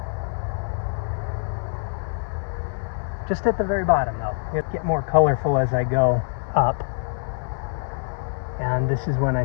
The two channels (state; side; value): silent; right; 62 dB below the other